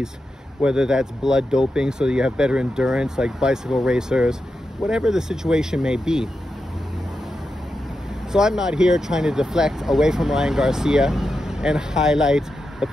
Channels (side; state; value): both; normal; correlation 0.88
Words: whether that's blood doping so that you have better endurance like bicycle racers, whatever the situation may be. So I'm not here trying to deflect away from Ryan Garcia and highlight the